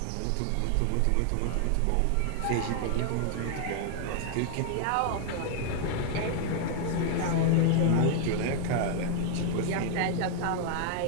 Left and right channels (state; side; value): different; both; correlation 0.00